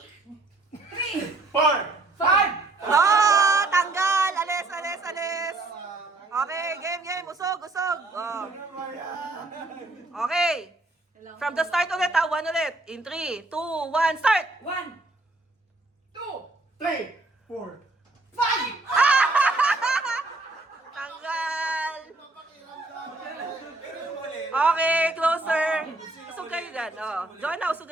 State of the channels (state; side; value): quieter; left; 3.1 dB